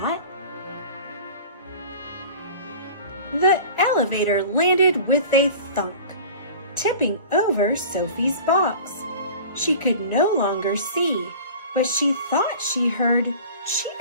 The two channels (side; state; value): both; inverted; correlation -0.40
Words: The elevator landed with a thunk, tipping over Sophie's box. She could no longer see, but she thought she heard